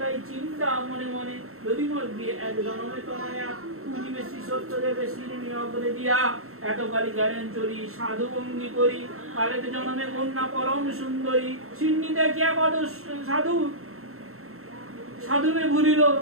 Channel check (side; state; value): left; late; 0.63 ms